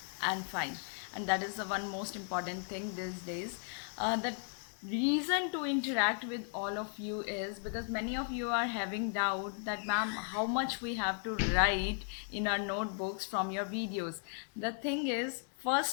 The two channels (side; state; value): right; silent; 54 dB below the other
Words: and fine, and that is the one most important thing these days. The reason to interact with all of you is because many of you are having doubt that, ma'am, how much we have to write in our notebooks from your videos. The thing is,